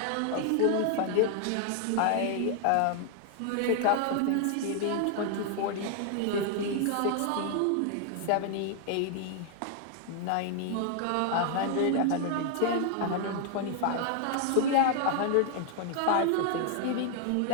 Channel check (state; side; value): different; both; correlation 0.00